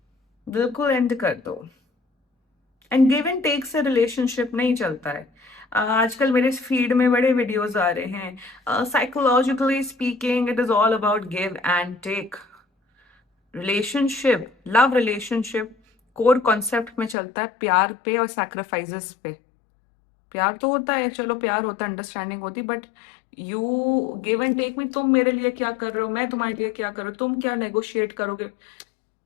बिल्कुल एंड कर दो. एंड गिव एंड टेक से रिलेशनशिप नहीं चलता है. आजकल मेरे फीड में बड़े वीडियोस आ रहे हैं. Psychologically speaking, it is all about give and take. Relationship, love relationship core concept में चलता है प्यार पे और सैक्रिफाइसेस पे. प्यार तो होता है, चलो प्यार होता है, अंडरस्टैंडिंग होती, but you give and take में तुम मेरे लिए क्या कर रहे हो, मैं तुम्हारे लिए क्या कर रहा हूँ, तुम क्या नेगोशिएट करोगे.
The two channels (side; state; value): right; drops out; at 17.2 s